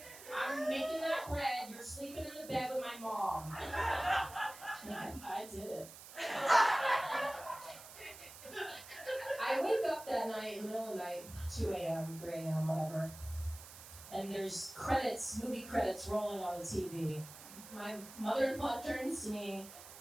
I'm making that bread. You're sleeping in the bed with my mom. I did it. I wake up that night, in the middle of the night, 2 a.m., 3 a.m., whatever. And there's movie credits rolling on the TV. My mother-in-law turns to me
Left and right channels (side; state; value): right; noise; hiss, 15 dB below the sound